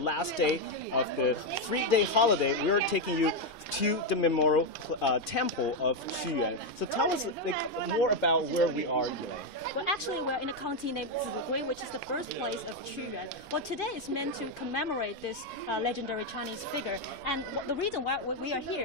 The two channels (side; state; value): both; normal; correlation 0.04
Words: day of the 3-day holiday, we're taking you to the memorial temple of Qu Yuan. So tell us more about where we are, Yilei. Well, actually, we're in a county named Zi Gui, which is the birthplace of Qu Yuan. Well, today is meant to commemorate this legendary Chinese figure. And the reason why we are